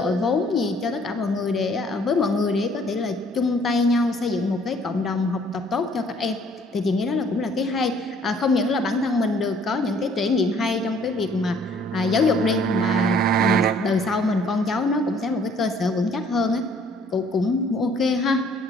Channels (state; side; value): normal; both; correlation 0.59